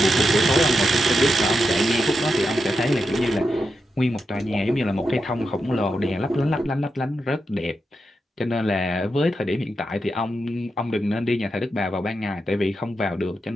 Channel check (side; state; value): both; normal; correlation 0.87